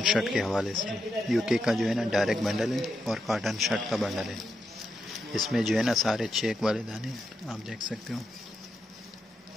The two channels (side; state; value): both; normal; correlation 0.84